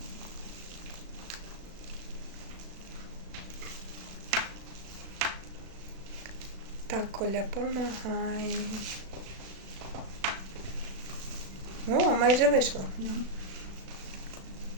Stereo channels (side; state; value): left; late; 36 ms